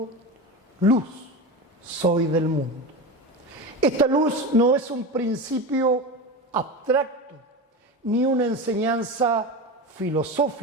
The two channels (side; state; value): both; normal; correlation 0.24